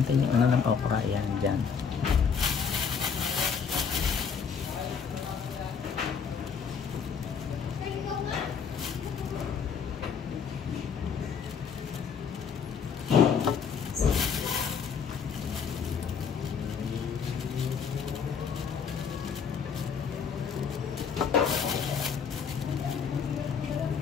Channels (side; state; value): right; quieter; 6.5 dB